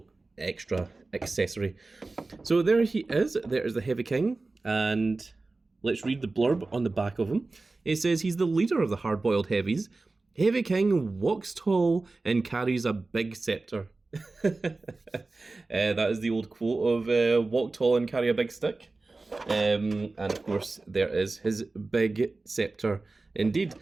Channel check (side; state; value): left; quieter; 3.5 dB